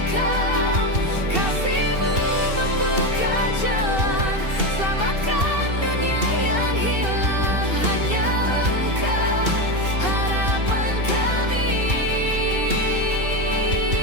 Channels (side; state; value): left; late; 2.7 ms